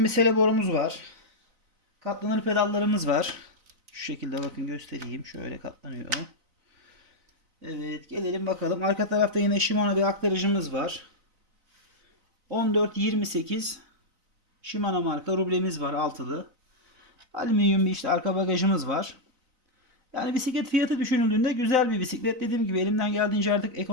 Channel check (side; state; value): left; late; 4.0 ms